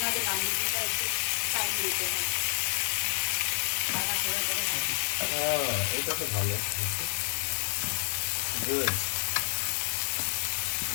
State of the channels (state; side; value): silent; right; digital silence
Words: না যে নানরুটিটা একটু সাইড দিতে হয়। আধা করে করে হবে। এটা তো ভালো। Good.